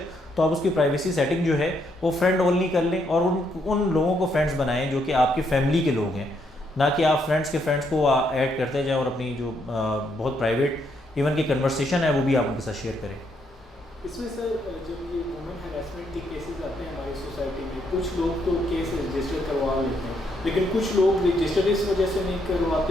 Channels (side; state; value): both; normal; correlation 0.75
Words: तो आप उसकी प्राइवेसी सेटिंग जो है वो फ्रेंड ओनली कर लें और उन लोगों को फ्रेंड्स बनाएं जो कि आपकी फैमिली के लोग हैं, ना कि आप फ्रेंड्स को ऐड करते जाएं और अपनी जो बहुत प्राइवेट इवन की कन्वर्सेशन है वो भी आप उनके साथ शेयर करें। इसमें सर जब ये वुमेन हैरेसमेंट के केसेस आते हैं हमारी सोसाइटी में, कुछ लोग तो केस रजिस्टर करवा लेते हैं, लेकिन कुछ लोग रजिस्टर इस वजह से नहीं